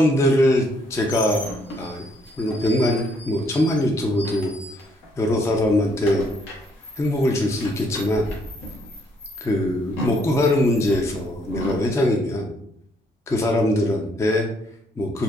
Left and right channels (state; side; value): normal; both; correlation 0.69